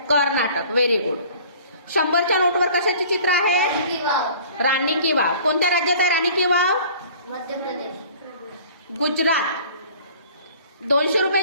कर्नाटक. Very good. 100च्या नोटवर कशाचे चित्र आहे? राणी वाव. राणी की वाव. कोणत्या राज्यात आहे राणी की वाव? मध्य प्रदेश. गुजरात. 200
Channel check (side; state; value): both; inverted; correlation -0.48